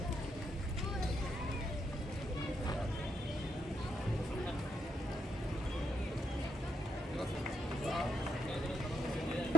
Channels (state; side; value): normal; both; correlation 0.79